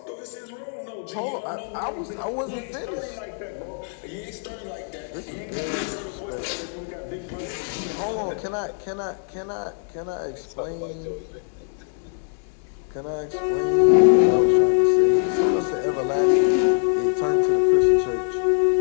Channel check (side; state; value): right; silent; digital silence